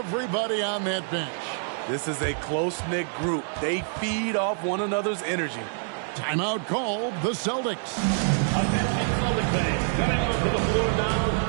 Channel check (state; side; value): silent; left; digital silence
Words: on that bench. This is a close-knit group. They feed off one another's energy. Timeout called the Celtics. Attention Celtics fans, coming onto the floor now